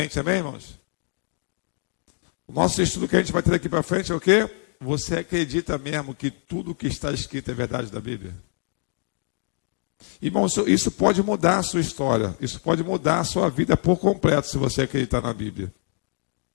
amém, irmãos? O nosso estudo que a gente vai ter daqui para frente é o quê? Você acredita mesmo que tudo que está escrito é verdade da Bíblia? Irmão, isso pode mudar a sua história. Isso pode mudar a sua vida por completo, se você acreditar na Bíblia.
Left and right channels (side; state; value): right; silent; 60 dB below the other